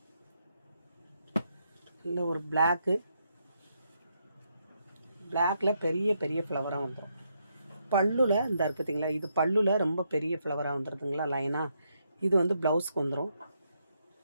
இல்லை ஒரு பிளாக்கு, பிளாக்கில் பெரிய பெரிய ஃப்ளவராக வந்துடும். பல்லுல இந்த இருக்குதுங்களா, இது பல்லுல ரொம்ப பெரிய ஃப்ளவராக வந்துடுதுங்களா லைனாக. இது வந்து ப்ளவுஸ்க்கு வந்துடும்.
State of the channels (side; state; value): both; inverted; correlation -0.78